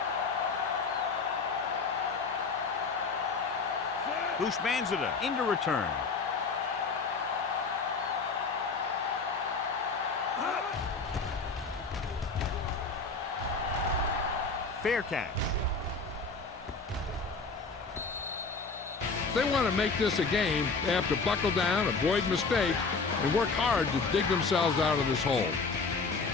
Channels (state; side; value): quieter; right; 4.4 dB